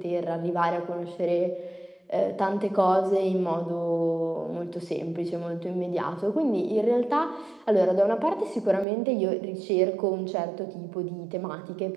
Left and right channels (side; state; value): left; drops out; at 8.8 s